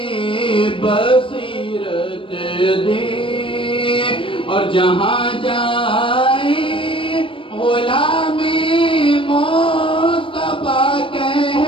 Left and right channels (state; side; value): late; right; 0.25 ms